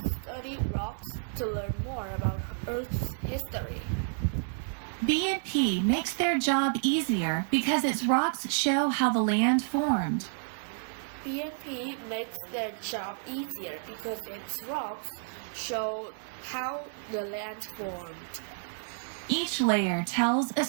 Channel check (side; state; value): left; silent; digital silence